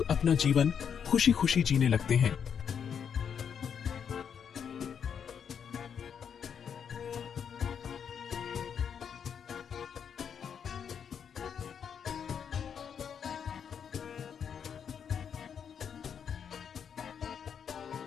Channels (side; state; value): right; quieter; 7.5 dB